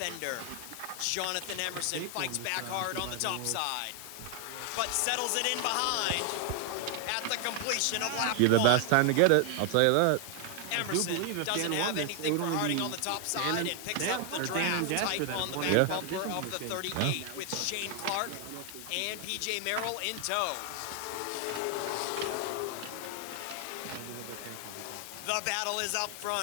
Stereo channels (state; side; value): different; both; correlation 0.00